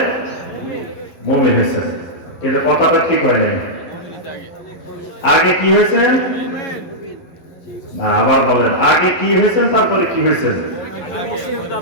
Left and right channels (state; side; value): late; right; 11 ms